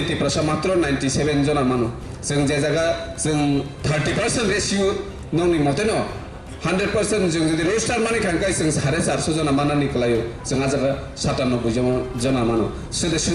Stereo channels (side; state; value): both; identical; correlation 1.00